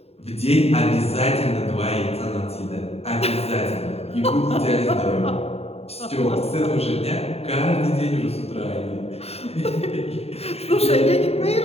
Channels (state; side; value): late; right; 0.30 ms